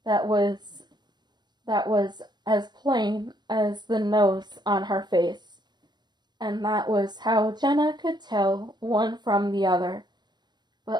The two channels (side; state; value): left; late; 0.21 ms